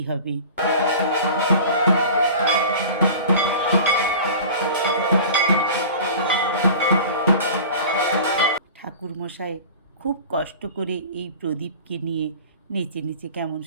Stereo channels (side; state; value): both; inverted; correlation -0.39